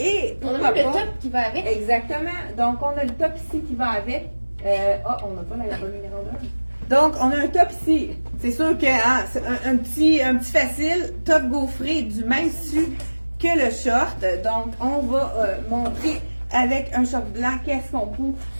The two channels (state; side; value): inverted; both; correlation -1.00